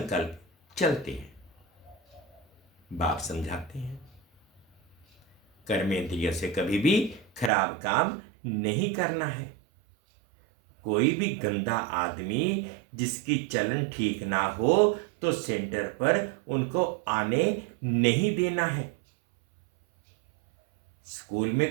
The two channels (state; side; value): drops out; left; at 7.5 s